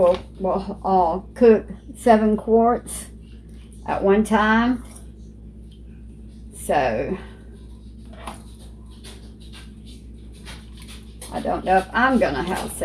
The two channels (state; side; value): identical; both; correlation 1.00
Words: cook 7 quarts at one time. So I don't know if I'm gonna have